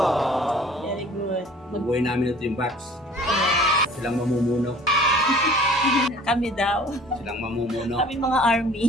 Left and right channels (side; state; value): both; normal; correlation 0.50